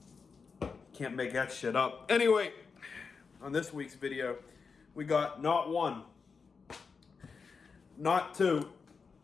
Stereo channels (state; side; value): quieter; right; 5.2 dB